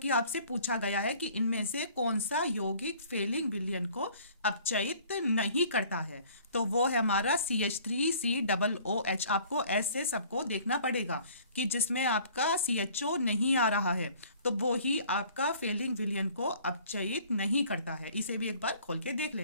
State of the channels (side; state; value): both; inverted; correlation -0.53